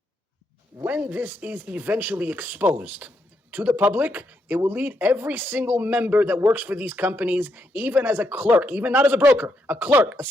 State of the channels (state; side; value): normal; both; correlation 0.79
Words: when this is eventually exposed to the public, it will lead every single member that works for these companies, even as a clerk, even not as a broker, a clerk, a